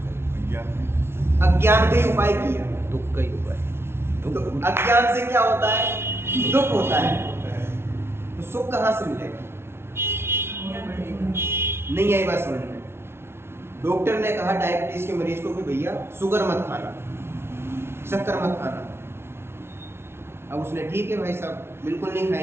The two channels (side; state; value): left; late; 0.12 ms